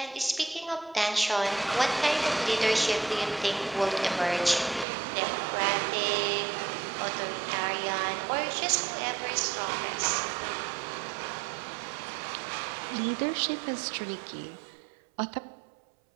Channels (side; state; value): left; drops out; at 4.9 s